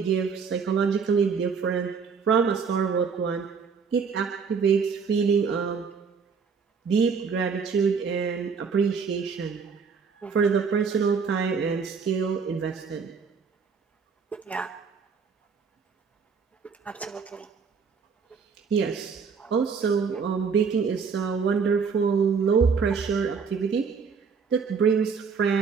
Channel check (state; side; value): quieter; left; 5.8 dB